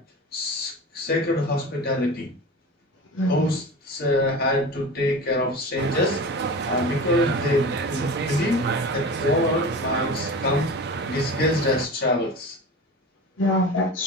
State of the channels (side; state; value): both; normal; correlation 0.32